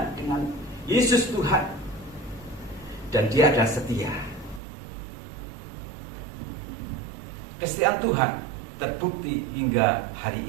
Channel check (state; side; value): drops out; left; at 4.6 s